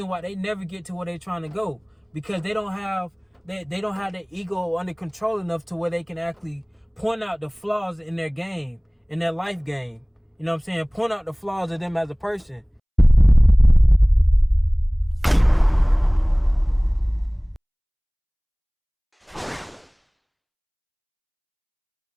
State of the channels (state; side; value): identical; both; correlation 1.00